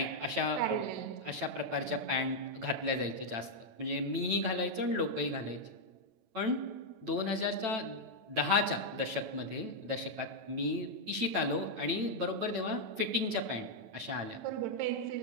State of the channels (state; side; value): late; left; 9.0 ms